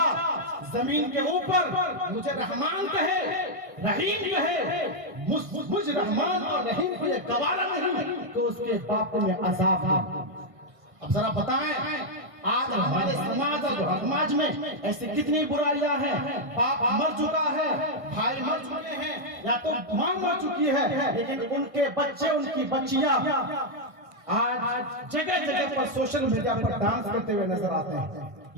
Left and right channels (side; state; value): left; late; 1.6 ms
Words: زمین کے اوپر مجھے رحمان کہے، رحیم کہے، مجھ رحمان اور رحیم کو یہ گوارا نہیں تو اس کے باپ کو میں عذاب دوں۔ اب ذرا بتائیں آج ہمارے سماج اور سماج میں ایسی کتنی برائیاں ہیں، باپ مر چکا ہے، بھائی مر چکے ہیں، یا تو ماں مر چکی ہے، لیکن ان کے بچے، ان کی بچیاں آج جگہ جگہ پر سوشل میڈیا پر ڈانس کرتے ہوئے نظر آتے ہیں۔